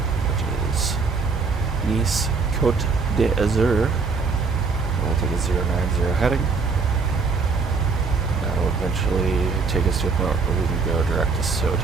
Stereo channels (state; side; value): quieter; left; 4.7 dB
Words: which is Nice, Côte d'Azur. We'll take a 090 heading. That'll eventually take us to a point where we can go direct to